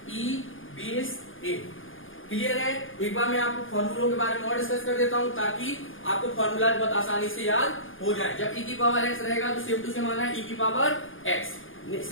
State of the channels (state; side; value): late; right; 0.58 ms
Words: e base a। Clear है। एक बार मैं आपको फॉर्मूलों के बारे में और डिस्कस कर देता हूँ ताकि आपको फॉर्मूला बहुत आसानी से याद हो जाए। जब e की पावर x रहेगा तो सेम टू सेम आना है e की पावर x।